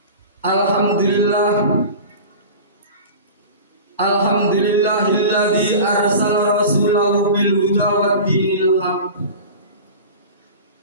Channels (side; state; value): both; inverted; correlation -0.34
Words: Alhamdulillah, Alhamdulillahilladzi arsala rasulahu bil huda wa dinil haq